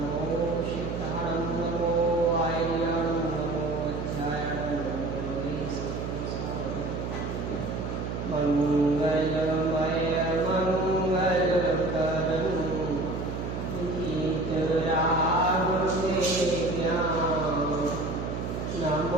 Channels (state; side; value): noise; right; hum, 4 dB below the sound